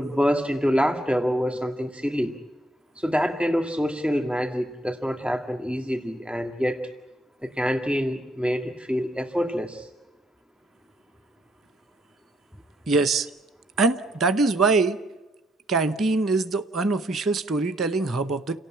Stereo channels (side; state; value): both; normal; correlation 0.72